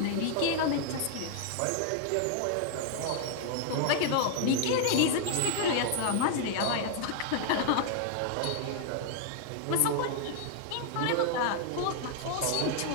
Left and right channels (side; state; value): both; different; correlation -0.01